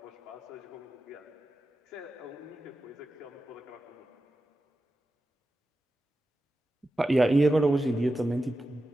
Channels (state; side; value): normal; both; correlation 0.92